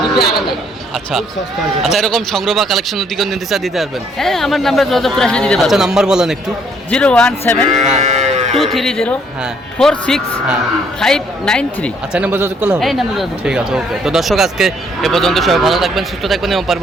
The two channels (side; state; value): both; normal; correlation 0.66